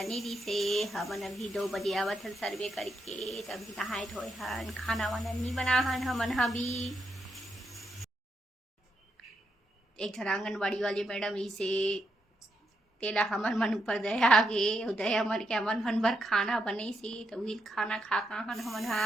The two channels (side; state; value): both; normal; correlation 0.81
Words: नीरी से हमन अभी 2 बजे आवत हन सर्वे करके। तभी नहाए धोए हन, खाना वाना नहीं बना हन हमन भी। एक झन आंगनबाड़ी वाले मैडम इसे तेला हमन मन ऊपर दया आगे दया मर के हमन मन बर खाना बने से तो वही खाना खा हन हमन